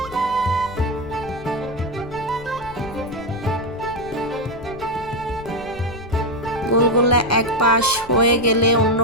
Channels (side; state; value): left; noise; rumble, 19 dB below the sound